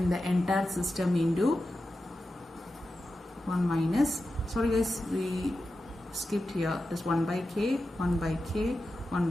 the entire system into 1 minus, sorry guys, we skipped here, this 1 by K, 1 by K, 1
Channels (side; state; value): both; normal; correlation 0.91